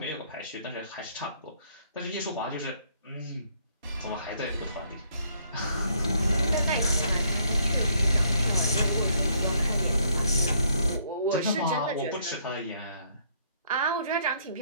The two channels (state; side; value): inverted; both; correlation -0.67